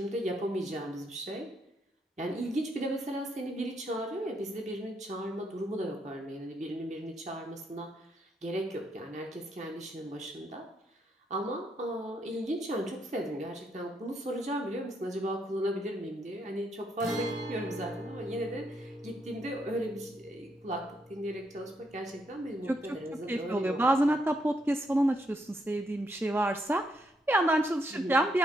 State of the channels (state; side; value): normal; both; correlation 0.76